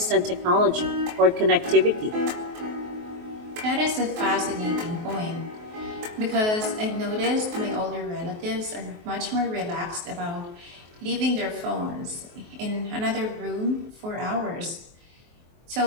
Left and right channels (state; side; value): late; left; 23 ms